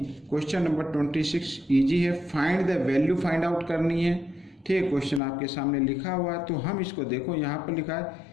क्वेश्चन नंबर 26 इजी है। Find the value find out करनी है, ठीक है। क्वेश्चन आपके सामने लिखा हुआ है, तो हम इसको देखो, यहाँ पर लिखा है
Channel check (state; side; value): drops out; right; at 5.2 s